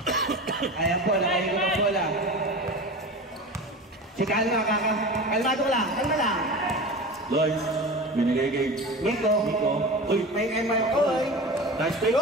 Ayan po, nakahigo na po lang. Si Kalma, kalmado lang. Lois, binigay kay Nico. Uy, May oy. nice pick.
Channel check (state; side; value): normal; both; correlation 0.31